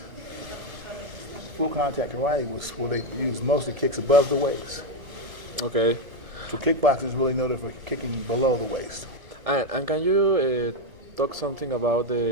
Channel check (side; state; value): left; late; 2.0 ms